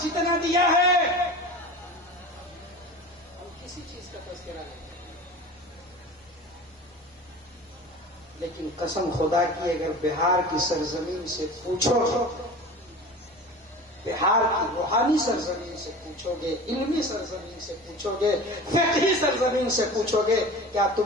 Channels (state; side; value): normal; both; correlation 0.36